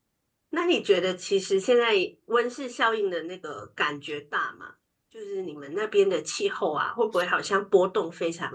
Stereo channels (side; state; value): both; identical; correlation 1.00